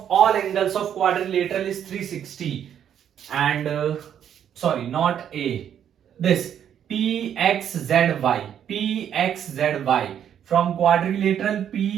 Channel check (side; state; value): left; quieter; 9.3 dB